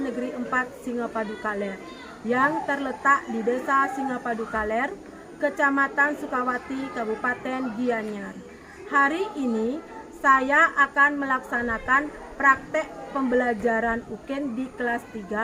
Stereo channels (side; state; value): both; identical; correlation 1.00